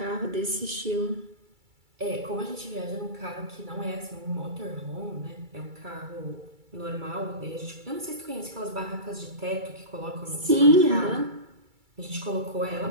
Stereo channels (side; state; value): left; late; 2.3 ms